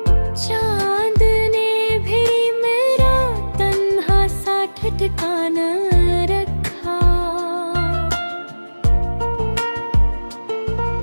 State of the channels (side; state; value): both; inverted; correlation -1.00